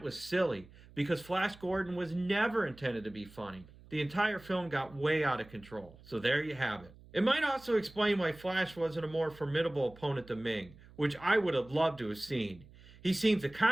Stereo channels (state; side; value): noise; right; hum, 22 dB below the sound